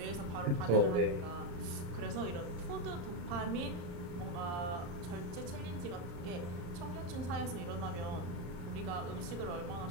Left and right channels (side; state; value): left; late; 34 ms